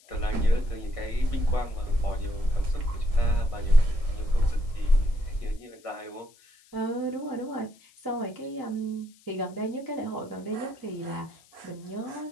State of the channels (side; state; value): left; noise; hiss, 28 dB below the sound